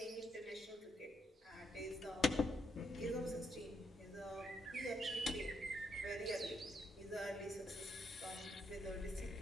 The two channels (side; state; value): both; normal; correlation 0.77